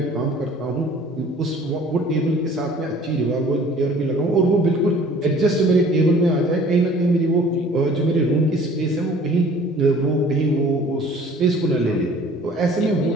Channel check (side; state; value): both; normal; correlation 0.51